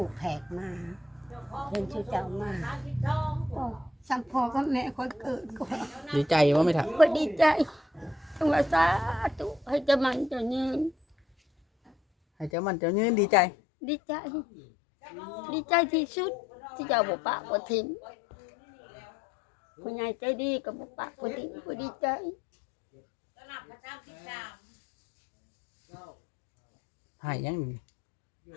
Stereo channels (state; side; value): drops out; right; at 12.5 s